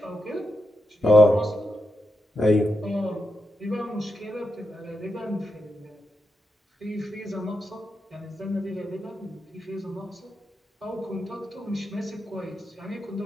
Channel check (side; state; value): both; normal; correlation 0.87